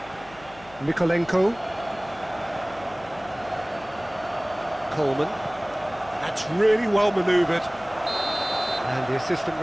Mikolenko. Coleman. That's really well manoeuvred. And the assistant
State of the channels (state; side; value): noise; left; hum, 22 dB below the sound